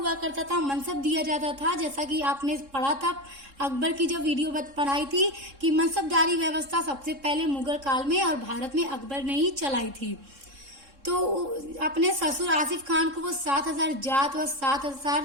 करता था, मनसब दिया जाता था, जैसा कि आपने पढ़ा था अकबर की जब वीडियो पढ़ाई थी कि मनसबदारी व्यवस्था सबसे पहले मुगल काल में और भारत में अकबर ने ही चलाई थी। तो अपने ससुर आसिफ खान को वो 7000 जात व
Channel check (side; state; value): left; late; 3.7 ms